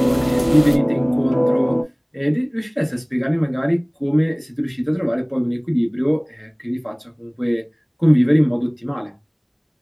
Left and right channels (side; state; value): both; identical; correlation 1.00